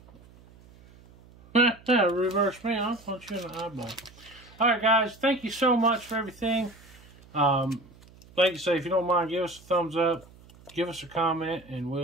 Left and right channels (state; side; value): noise; right; hum, 24 dB below the sound